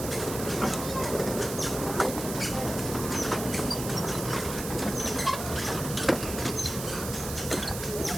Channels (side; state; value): right; noise; hiss, 7 dB below the sound